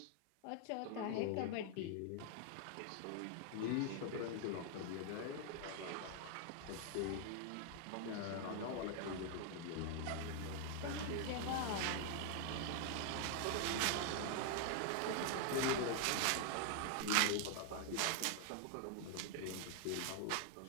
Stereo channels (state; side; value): different; both; correlation 0.00